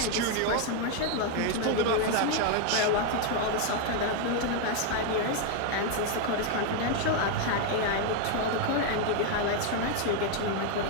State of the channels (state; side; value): different; both; correlation 0.01